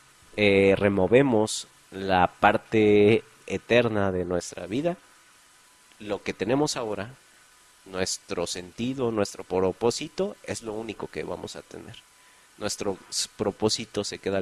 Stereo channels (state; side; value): identical; both; correlation 1.00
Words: removemos la parte eterna de nuestra vida, lo que tenemos ahora, nuestro sentido, nuestro propósito, es lo único que vamos a tener. Nuestro propósito se queda